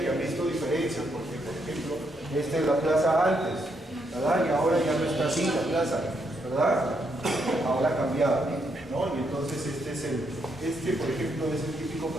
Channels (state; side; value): normal; both; correlation 0.77